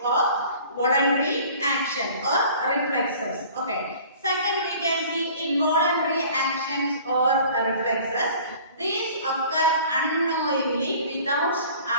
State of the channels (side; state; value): both; inverted; correlation -0.48